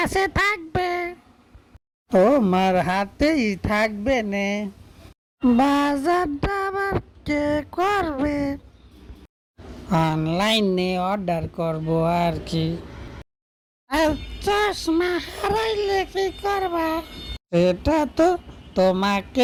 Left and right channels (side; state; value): both; identical; correlation 1.00